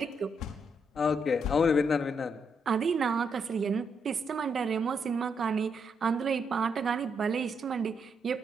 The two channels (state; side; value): normal; both; correlation 0.78